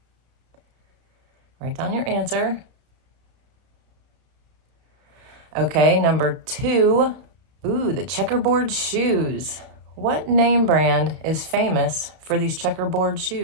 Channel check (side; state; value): left; late; 31 ms